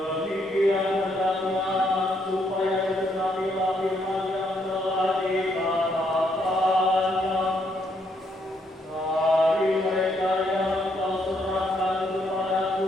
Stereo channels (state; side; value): normal; both; correlation 0.74